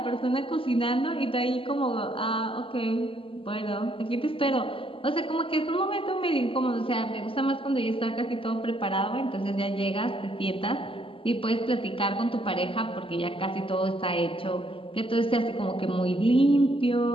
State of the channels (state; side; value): late; right; 0.26 ms